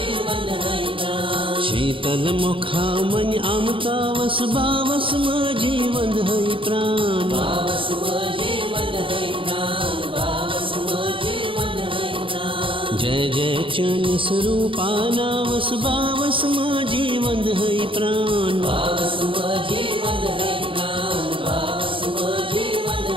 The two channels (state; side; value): late; left; 0.25 ms